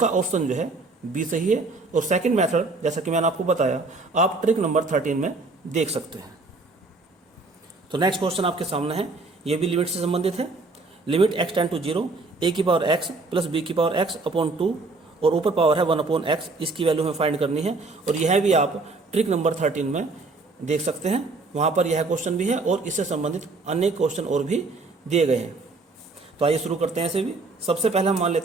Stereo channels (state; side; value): quieter; left; 3.6 dB